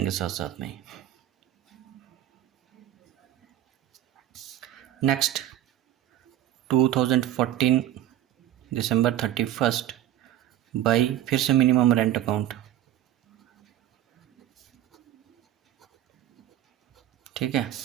साथ साथ में। नेक्स्ट 2014 दिसंबर 31 बाई फिर से मिनिमम रेंट अकाउंट। ठीक है,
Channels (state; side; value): quieter; left; 12.5 dB